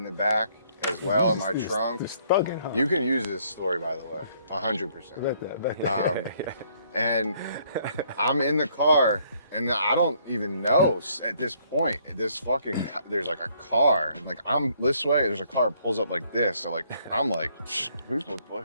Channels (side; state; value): both; inverted; correlation -0.66